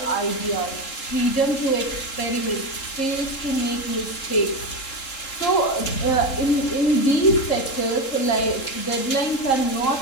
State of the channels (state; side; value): late; right; 3.7 ms